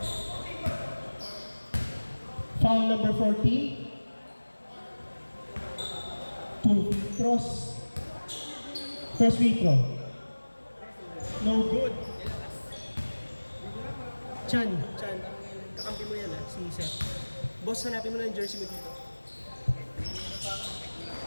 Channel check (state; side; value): inverted; both; correlation -1.00